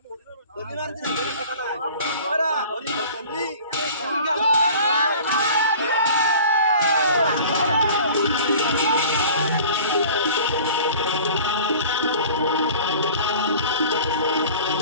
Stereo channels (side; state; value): both; inverted; correlation -0.44